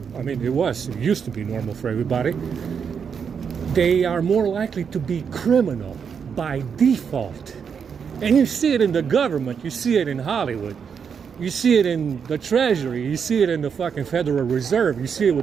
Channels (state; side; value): quieter; left; 6.7 dB